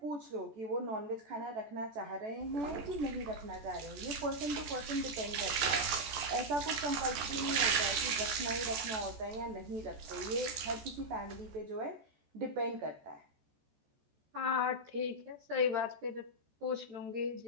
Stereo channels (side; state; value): left; late; 14 ms